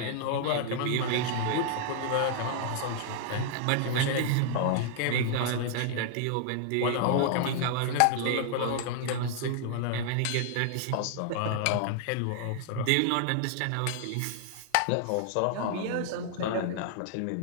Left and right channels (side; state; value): both; different; correlation -0.01